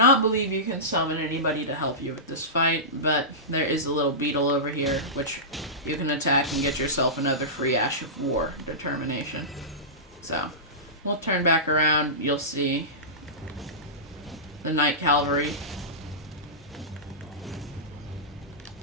believe you can summon anybody to help you with this fight, but there is a little beetle over here, which you can attack and get yourself another free Ash of War determination. So, we'll turn back around, you'll see the Knight Cavalry.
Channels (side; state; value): both; normal; correlation -0.18